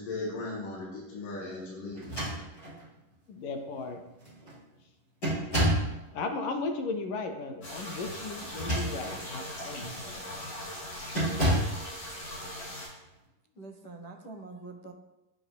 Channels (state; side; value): late; right; 11 ms